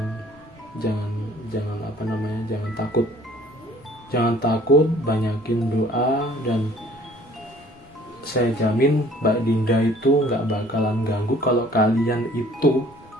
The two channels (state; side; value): normal; both; correlation 0.54